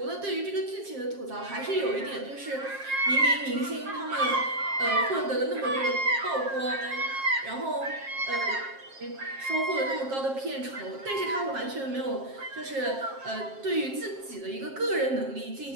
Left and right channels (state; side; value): late; left; 7.5 ms